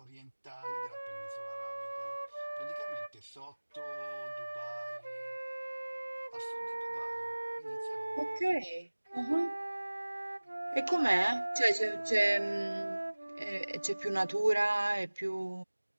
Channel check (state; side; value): inverted; both; correlation -1.00